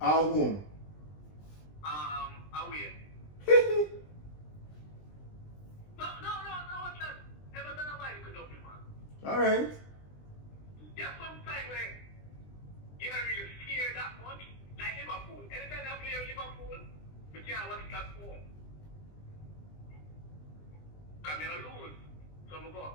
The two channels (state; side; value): late; right; 20 ms